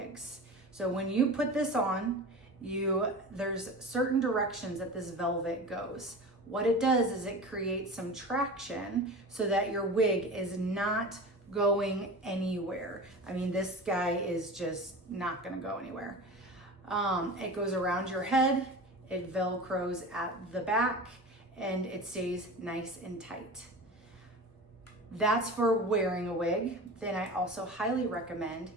So when you put this on, there's certain directions that this velvet goes. What it does is it creates some traction so that your wig is not going anywhere. I mean, this guy is just not gonna go anywhere. It goes around your head, it velcros at the back, and it stays nice and tight. That's for wearing a wig. Then I also highly recommend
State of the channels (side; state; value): both; normal; correlation 0.33